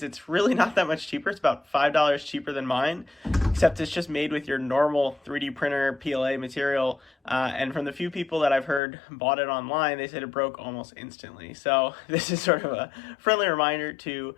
it's really not that much cheaper. It's about $5 cheaper than mine, except it's just made with your normal 3D printer PLA material. And from the few people that I've heard bought it online, they said it broke almost instantly. So this is sort of a friendly reminder to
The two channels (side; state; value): right; drops out; at 8.8 s